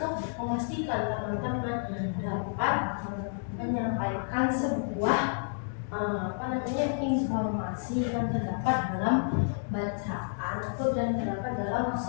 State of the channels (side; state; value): right; silent; digital silence